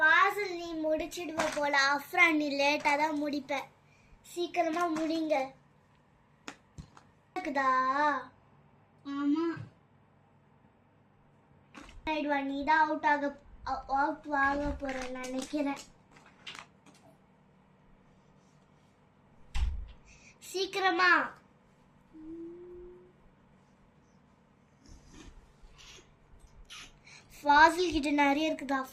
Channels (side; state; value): both; identical; correlation 1.00